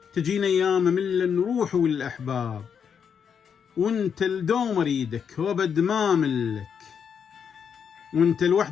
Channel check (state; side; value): quieter; right; 7.2 dB